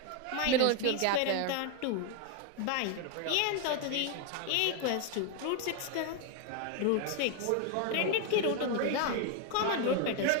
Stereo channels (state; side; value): different; both; correlation 0.01